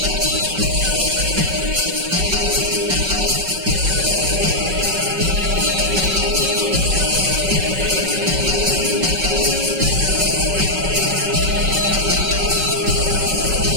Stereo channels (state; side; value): late; left; 5.3 ms